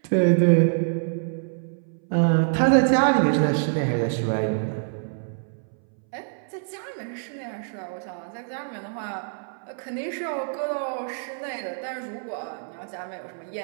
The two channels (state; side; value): silent; left; 61 dB below the other